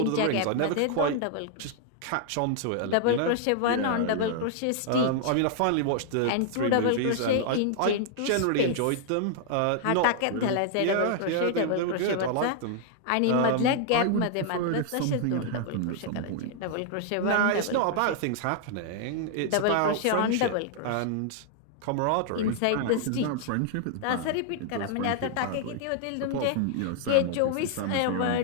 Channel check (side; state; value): both; different; correlation 0.00